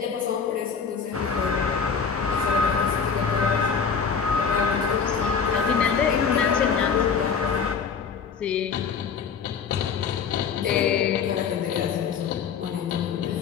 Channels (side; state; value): right; quieter; 6.3 dB